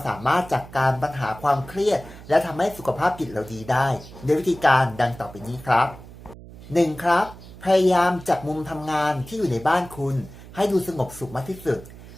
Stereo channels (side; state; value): right; noise; hum, 17 dB below the sound